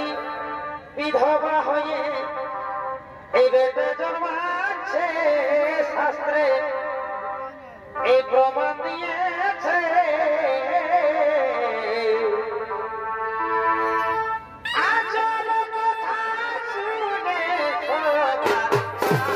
বিধবা হয়ে এই বেটা জন্মাচ্ছে, শাস্ত্রে এই প্রমাণ দিয়েছে। আজব কথা শুনে সবার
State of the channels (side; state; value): both; identical; correlation 1.00